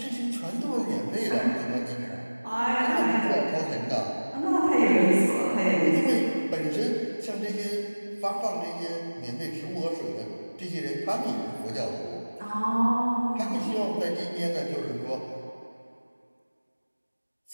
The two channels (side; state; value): both; inverted; correlation -1.00